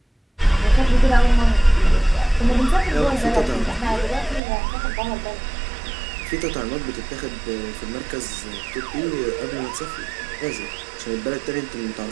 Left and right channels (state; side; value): drops out; left; at 4.4 s